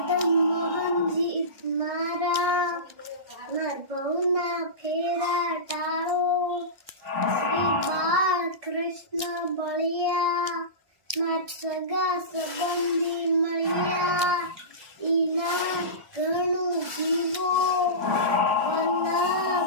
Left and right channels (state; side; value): late; left; 1.6 ms